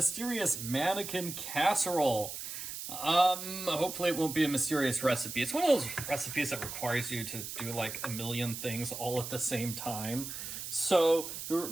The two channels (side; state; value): right; noise; hiss, 7 dB below the sound